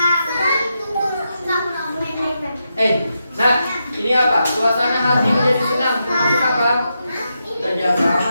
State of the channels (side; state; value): both; inverted; correlation -0.85